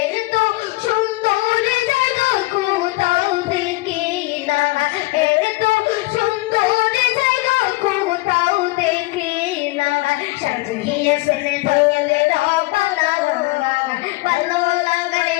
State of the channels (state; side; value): quieter; right; 21.9 dB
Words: সুন্দর জায়গা কোথাও দেখি না এত সুন্দর জায়গা কোথাও দেখি না সাজিয়েছেন ধনের বানা ভালো লাগার